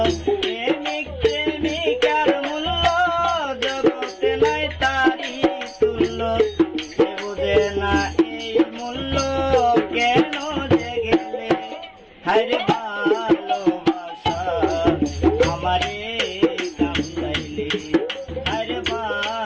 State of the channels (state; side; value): identical; both; correlation 1.00